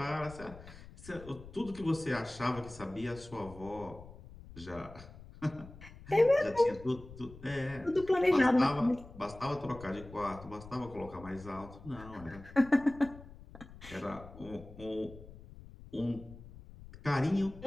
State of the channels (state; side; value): noise; left; rumble, 17 dB below the sound